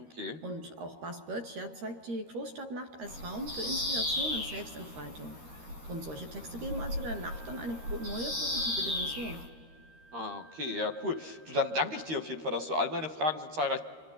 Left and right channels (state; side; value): late; left; 13 ms